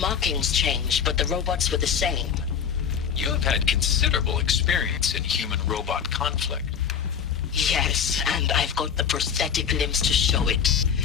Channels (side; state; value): right; quieter; 7.3 dB